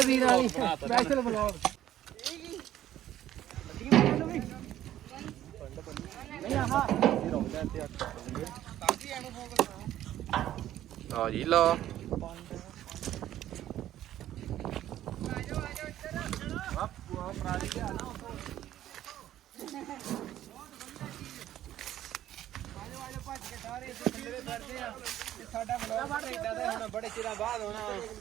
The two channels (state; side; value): quieter; left; 12.6 dB